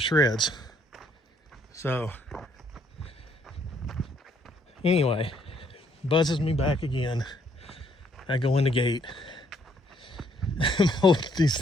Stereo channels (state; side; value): normal; both; correlation 0.68